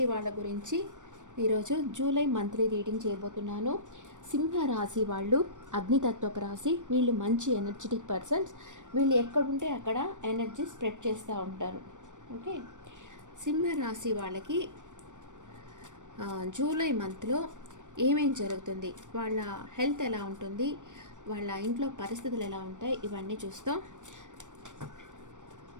వాళ్ళ గురించి ఈరోజు జూలై మంత్లీ రీడింగ్ చేయబోతున్నాను. సింహ రాశి వాళ్ళు అగ్నితత్వపు రాశి. వీళ్ళు మంచి ఎనర్జెటిక్ పర్సన్స్. వీళ్ళు ఎక్కడుంటే అక్కడ ఎనర్జీ స్ప్రెడ్ చేస్తూ ఉంటారు. ఓకే, సింహ రాశి వాళ్ళకి జూలై మంత్లో ఏమేం జరుగుతుంది, వాళ్ళ హెల్త్ ఎలా ఉంటుంది, వాళ్ళ ఇంట్లో పరిస్థితులు ఎలా ఉంటాయి, ఇవన్నీ చూస్తాం.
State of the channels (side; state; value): left; late; 0.85 ms